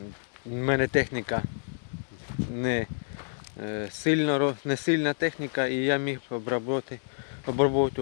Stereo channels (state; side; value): silent; right; digital silence